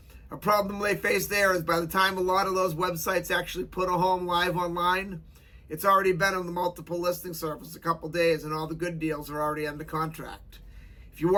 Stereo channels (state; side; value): identical; both; correlation 1.00